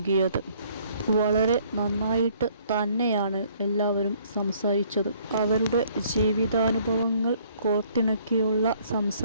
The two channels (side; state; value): both; inverted; correlation -0.61